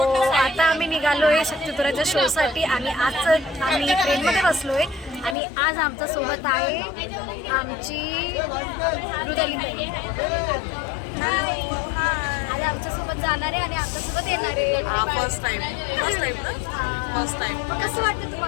आता आम्ही निघालोय शक्तितुराच्या शोसाठी आणि आज आम्ही ट्रेनमध्ये बसलोय आणि आज आमच्या सोबत आहे आमची मृदुलीताई. आज आमच्यासोबत जाणार आहे आणि आमच्यासोबत येणार आहे. फर्स्ट टाइम मग कसं वाटतं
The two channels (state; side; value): drops out; right; at 5.4 s